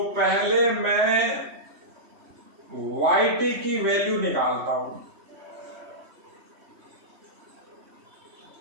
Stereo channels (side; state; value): left; late; 3.1 ms